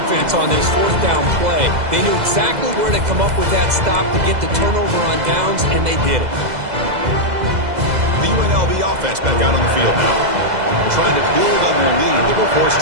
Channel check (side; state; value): left; late; 2.0 ms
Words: on this 4th down play. They knew exactly where to come up with that stop to get the turnover on downs, and they did it. The UNLV offense back out on the field now. Trying to build on their lead. They were forced